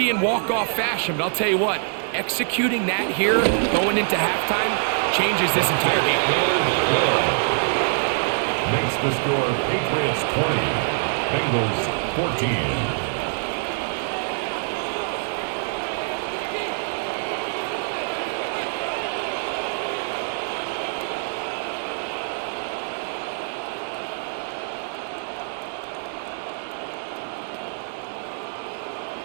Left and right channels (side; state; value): left; silent; 60 dB below the other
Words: in walk-off fashion, but I'll tell you what, executing that here going into halftime changes this entire game. Makes the score Patriots 20, Bengals 14.